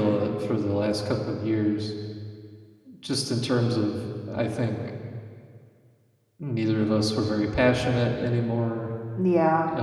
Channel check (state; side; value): identical; both; correlation 1.00